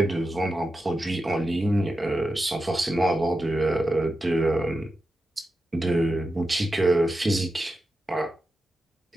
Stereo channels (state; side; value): normal; both; correlation 0.90